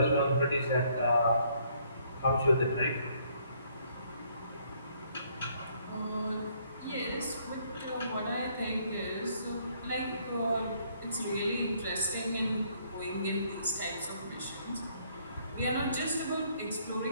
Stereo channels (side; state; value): both; inverted; correlation -0.66